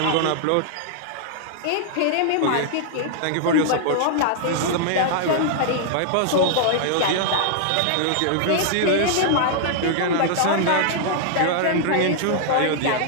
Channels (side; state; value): both; different; correlation -0.01